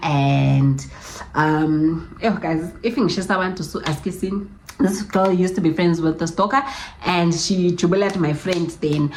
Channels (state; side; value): identical; both; correlation 1.00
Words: guys, if you want to ask this girl used to be friends with the stalker and she jubilated my friend then.